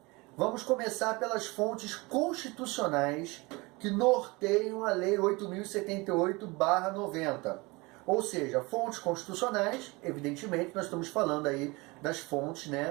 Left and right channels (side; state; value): left; quieter; 24.6 dB